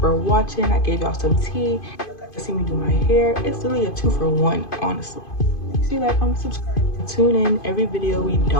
for watching. I gave y'all some tea. You got to see me do my hair. It's really a 2-for-1, honestly. Make sure you like, comment, subscribe. Tune in every video. We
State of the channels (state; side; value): late; right; 2.5 ms